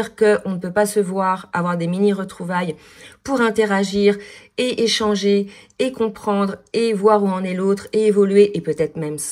qu'on ne peut pas se voir, avoir des mini-retrouvailles pour interagir et échanger et comprendre et voir où en est l'autre et évoluer et peut-être même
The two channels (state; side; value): identical; both; correlation 1.00